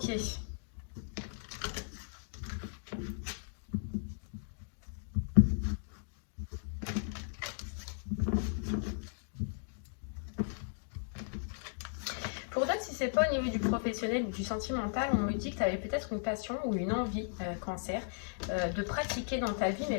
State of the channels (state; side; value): silent; right; digital silence